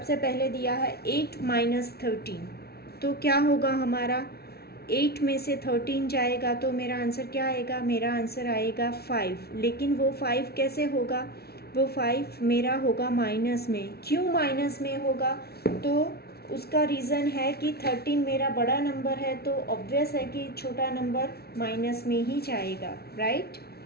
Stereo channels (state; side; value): late; right; 0.45 ms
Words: पहले दिया है 8 माइनस 13, तो क्या होगा हमारा, 8 में से 13 जाएगा तो मेरा आंसर क्या आएगा, मेरा आंसर आएगा 5। लेकिन वो 5 कैसे होगा, वो 5 मेरा होगा माइनस में। क्यों माइनस में होगा, तो उसका रीज़न है कि 13 मेरा बड़ा नंबर है, तो ऑब्वियस है कि छोटा नंबर माइनस में ही जाएगा, राइट।